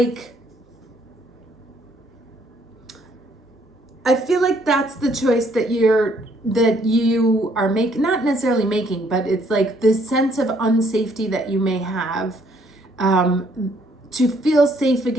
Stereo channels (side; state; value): both; normal; correlation 0.66